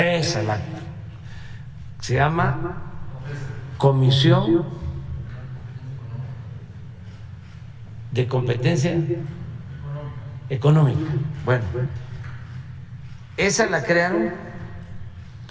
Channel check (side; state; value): both; identical; correlation 1.00